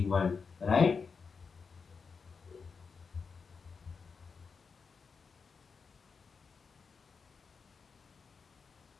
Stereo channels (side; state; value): right; quieter; 5.3 dB